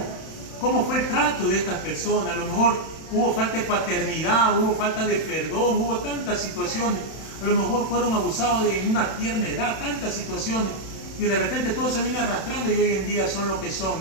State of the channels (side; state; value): right; late; 31 ms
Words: cómo fue el trato de estas personas. A lo mejor hubo falta de paternidad, hubo falta de perdón, hubo tantas situaciones. A lo mejor fueron abusados en una tierna edad, tantas situaciones, y de repente todo se viene arrastrando y hoy en día son lo que son,